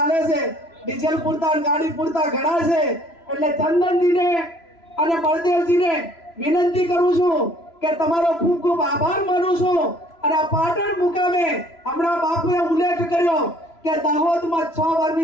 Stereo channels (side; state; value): right; late; 3.0 ms